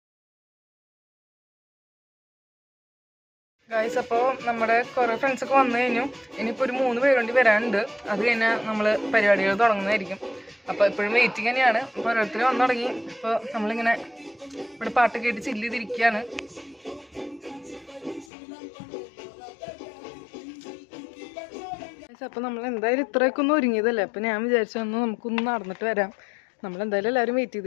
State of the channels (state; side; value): drops out; right; at 18.3 s